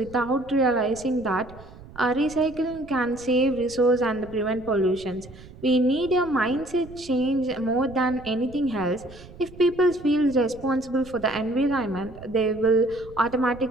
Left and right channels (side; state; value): right; noise; rumble, 19 dB below the sound